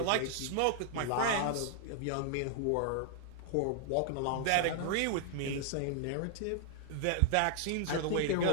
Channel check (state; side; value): different; both; correlation -0.01